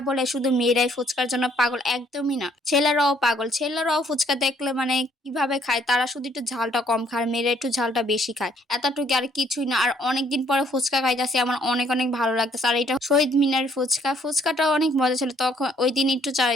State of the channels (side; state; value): both; normal; correlation 0.65